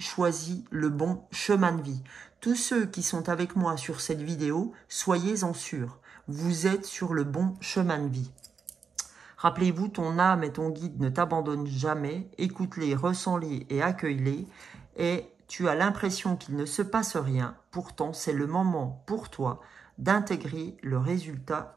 le bon chemin de vie. Tous ceux qui sont avec moi sur cette vidéo, soyez-en sûrs. Vous êtes sur le bon chemin de vie. Rappelez-vous, ton âme et ton guide ne t'abandonnent jamais. Écoute-les, ressens-les et accueille-les. Et tu as l'impression qu'il ne se passe rien. Pourtant, c'est le moment pour toi d'intégrer le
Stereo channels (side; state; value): left; quieter; 6.0 dB